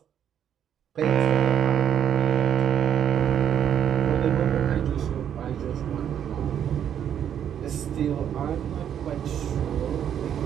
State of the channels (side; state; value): left; quieter; 9.3 dB